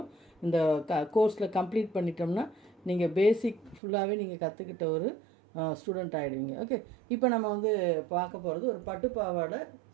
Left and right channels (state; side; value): drops out; left; at 3.8 s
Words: இந்த கோர்ஸில் கம்ப்ளீட் பண்ணிட்டோம்னா நீங்கள் பேசிக் ஃபுல்லாகவே நீங்கள் கற்றுக்கிட்ட ஒரு ஸ்டூடெண்ட் ஆகிடுவீங்க. ஓகே, இப்போ நம்ம வந்து பார்க்க போகிறது ஒரு பட்டு பாவாடை